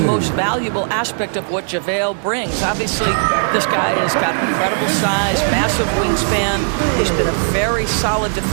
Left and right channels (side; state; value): left; silent; 68 dB below the other